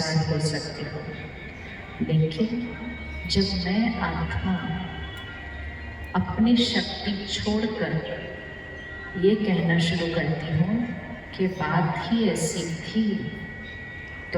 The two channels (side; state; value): both; identical; correlation 1.00